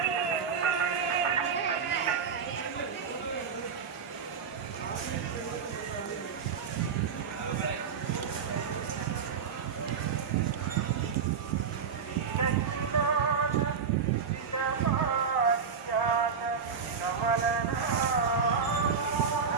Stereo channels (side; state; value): left; quieter; 6.3 dB